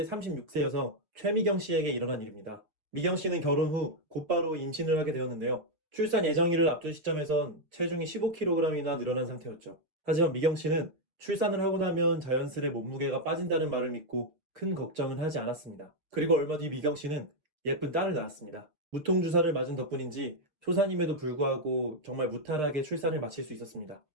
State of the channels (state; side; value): late; left; 6.5 ms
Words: 36세 여성 최미경 씨에게 일어난 일입니다. 미경 씨는 결혼 후 곧바로 임신을 하게 되었는데요. 출산 예정일을 앞둔 시점에선 체중이 15kg이나 늘어난 상태였죠. 하지만 미경 씨는 출산을 하고 나면 자연스레 몸무게가 빠진다는 말을 믿고 큰 걱정은 하지 않았습니다. 그리고 얼마 뒤 미경 씨는 예쁜 딸을 낳았습니다. 무통주사를 맞은 덕분인지 초산임에도 불구하고 정말 무탈하게 출산을 마칠 수 있었습니다.